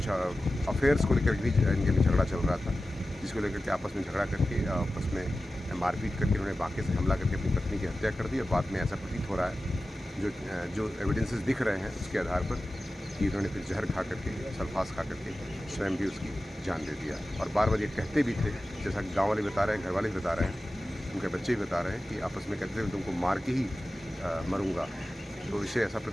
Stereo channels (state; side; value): normal; both; correlation 0.94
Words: अफेयर्स को लेकर भी इनके में झगड़ा चल रहा था, जिसको लेकर के आपस में झगड़ा करके आपस में मारपीट करके उन्होंने बांके से हमला करके अपनी पत्नी की हत्या कर दी। और बाद में ऐसा प्रतीत हो रहा है, जो एविडेंसेस दिख रहे हैं उसके आधार पर, कि उन्होंने फिर जहर खा करके, सल्फास खा करके स्वयं भी उसकी जान दे दिया। और बार-बार ये कहते भी थे, जैसा कि गाँव वाले बता रहे हैं, घर वाले भी बता रहे हैं, उनके बच्चे भी बता रहे हैं कि आपस में कहते थे तुमको मार के ही मरूँगा। तो इससे ऐसा